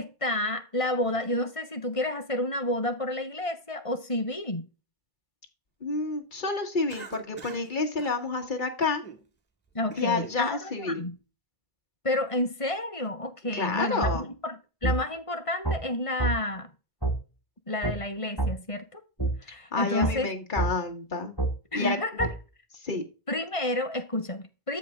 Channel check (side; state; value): right; late; 1.5 ms